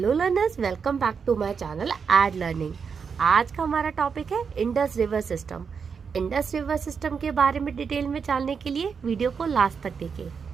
learners, welcome back to my channel Ed Learning. आज का हमारा टॉपिक है Indus river system. Indus river system के बारे में डिटेल में जानने के लिए वीडियो को लास्ट तक देखें।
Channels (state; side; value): quieter; left; 6.1 dB